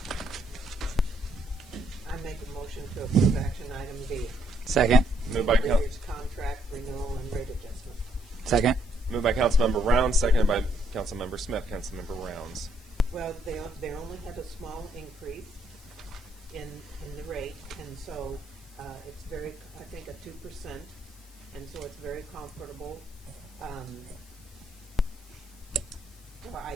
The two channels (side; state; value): left; noise; hiss, 24 dB below the sound